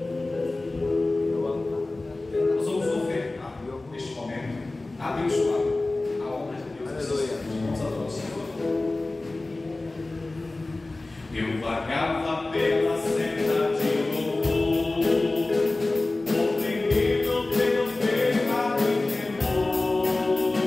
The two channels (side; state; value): right; quieter; 3.0 dB